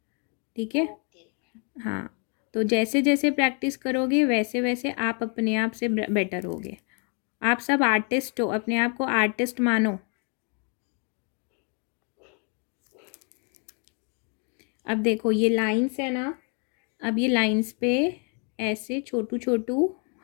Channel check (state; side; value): quieter; right; 38.0 dB